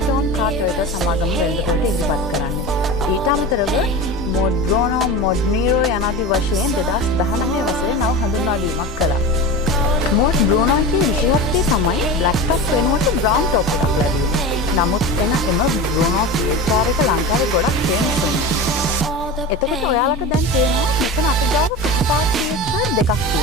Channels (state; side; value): normal; both; correlation 0.28